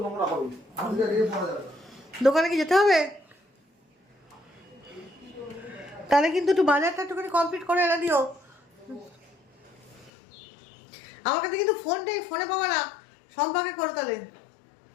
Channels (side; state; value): right; drops out; at 10.1 s